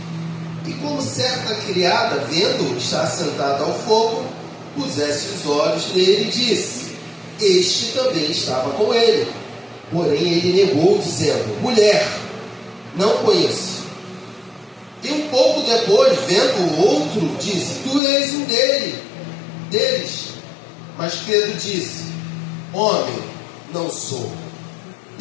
E como certa criada, vendo estar sentado ao fogo, pusesse os olhos nele e disse: este também estava com ele. Porém ele negou, dizendo: mulher, não conheço. E um pouco depois, vendo o outro, disse: tu és um deles. Mas Pedro disse: homem, não sou.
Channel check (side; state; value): right; drops out; at 18.0 s